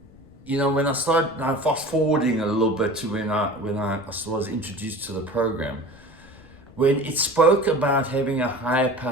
started fast forwarding a little bit to when I was introduced to the program, when it spoke about having a higher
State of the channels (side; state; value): left; noise; rumble, 24 dB below the sound